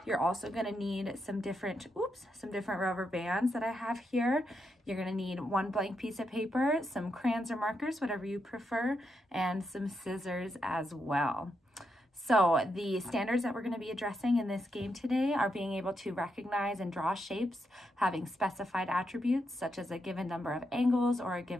You're also going to need some different rubber bands that I have here. You're going to need one blank piece of paper, some crayons or markers, whatever you prefer, and some scissors as well. So the standards that we're going to be addressing in this game today are being able to recognize and draw shapes having specified attributes such as a given number of angles or a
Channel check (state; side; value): normal; both; correlation 0.82